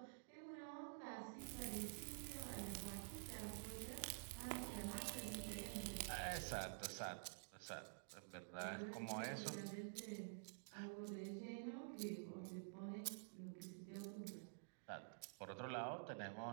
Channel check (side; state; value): left; silent; digital silence